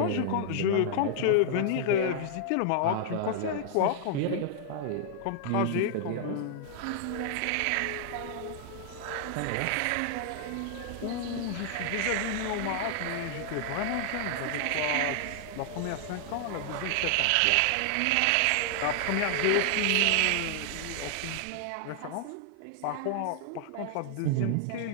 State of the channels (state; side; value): different; both; correlation -0.01